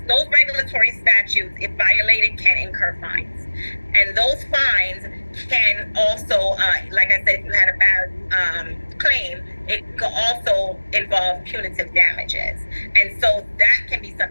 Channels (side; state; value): both; inverted; correlation -1.00